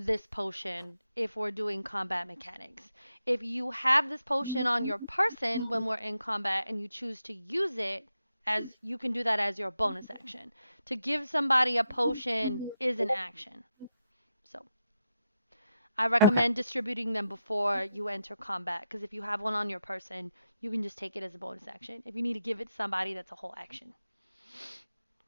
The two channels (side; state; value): both; inverted; correlation -0.85